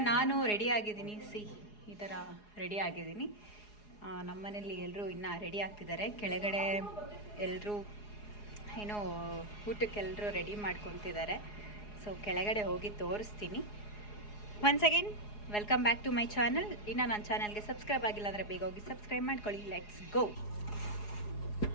ನಾನು ರೆಡಿ ಆಗಿದ್ದೀನಿ, ಈ ಥರ ರೆಡಿ ಆಗಿದ್ದೀನಿ. ನಮ್ಮ ಮನೇಲಿ ಎಲ್ಲರೂ ಇನ್ನೂ ರೆಡಿ ಆಗ್ತಿದ್ದಾರೆ. ಕೆಳಗಡೆ ಎಲ್ಲರೂ ಏನೋ ಊಟಕ್ಕೆಲ್ಲರೂ ರೆಡಿ ಮಾಡ್ಕೊತಿದ್ದಾರೆ. ಸೊ ಕೆಳಗಡೆ ಹೋಗಿ ತೋರಿಸ್ತೀನಿ. Once again welcome back to my channel. ಇನ್ನು ನನ್ನ ಚಾನಲ್ಗೆ ಸಬ್ಸ್ಕ್ರೈಬ್ ಆಗಿಲ್ಲ ಅಂದರೆ ಬೇಗ ಹೋಗಿ ಸಬ್ಸ್ಕ್ರೈಬ್ ಮಾಡ್ಕೊಳ್ಳಿ. Let's go.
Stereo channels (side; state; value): right; late; 4.8 ms